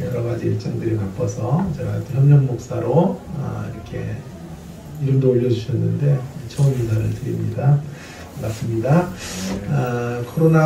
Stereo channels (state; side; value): identical; both; correlation 1.00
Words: 여러 가지 일정들이 바빠서 제가 협력 목사로 이렇게 이름도 올려주셨는데 처음 인사를 드립니다. 반갑습니다.